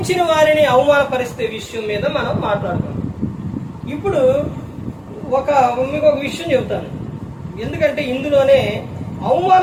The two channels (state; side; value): identical; both; correlation 1.00